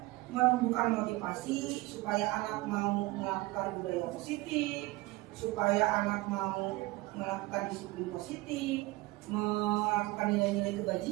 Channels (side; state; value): left; quieter; 20.8 dB